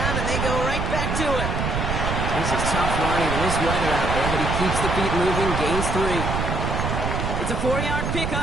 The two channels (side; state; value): right; noise; rumble, 1 dB below the sound